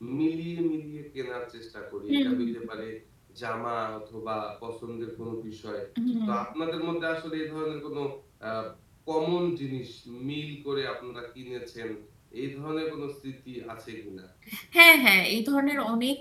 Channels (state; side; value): identical; both; correlation 1.00